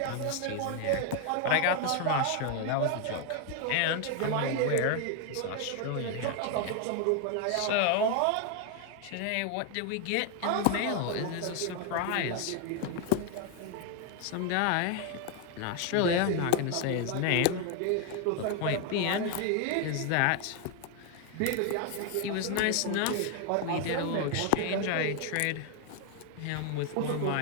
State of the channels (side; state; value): both; different; correlation 0.01